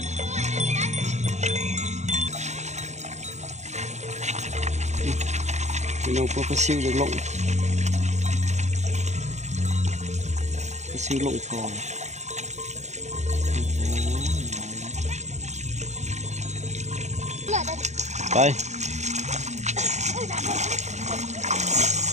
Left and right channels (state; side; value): late; left; 0.33 ms